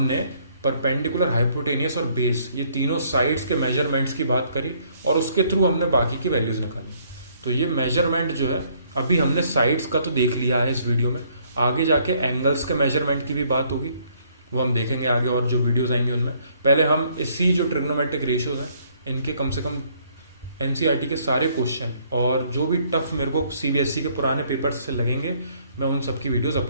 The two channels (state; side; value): inverted; both; correlation -0.65